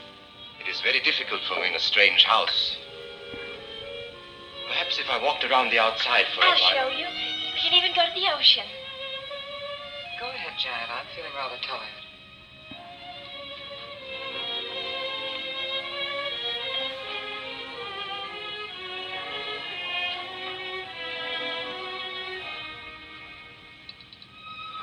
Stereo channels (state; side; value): identical; both; correlation 1.00